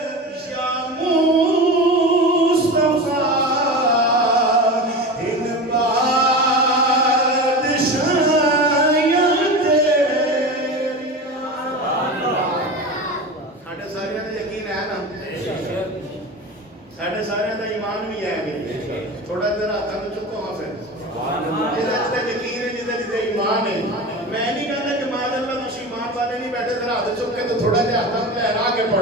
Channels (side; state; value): both; normal; correlation 0.28